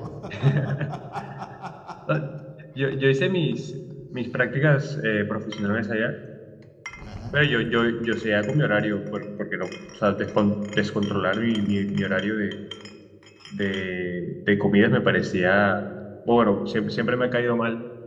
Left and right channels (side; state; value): both; identical; correlation 1.00